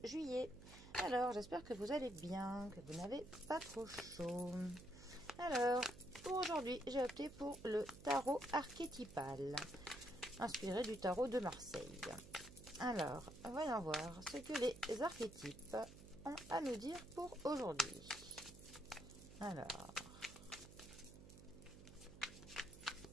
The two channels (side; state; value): right; noise; hum, 16 dB below the sound